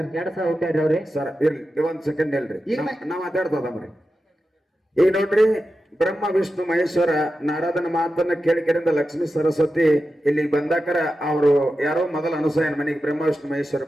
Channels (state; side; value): normal; both; correlation 0.91